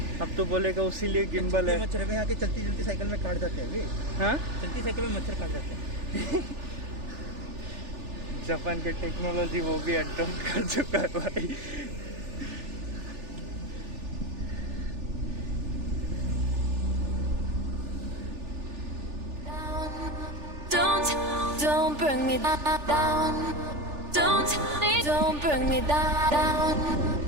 अब तो बोलेगा उसीलिए गिम्बल है। मच्छर में आके चलती चलती साइकिल में काट जाते हैं वे। हाँ, चलती साइकिल में मच्छर काट जाते हैं। जापान के टेक्नोलॉजी वो भी अडॉप्ट कर चुका है भाई। Don't bring me down. Don't bring me down.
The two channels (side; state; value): left; late; 3.4 ms